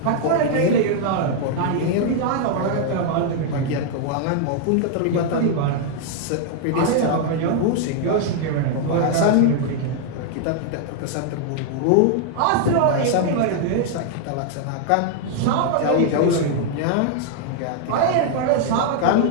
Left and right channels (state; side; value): different; both; correlation 0.00